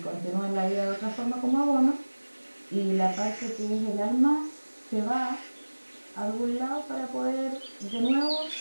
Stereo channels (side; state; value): both; inverted; correlation -1.00